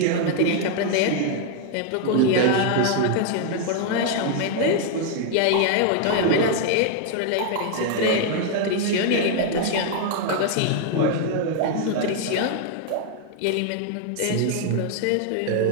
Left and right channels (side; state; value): both; different; correlation 0.00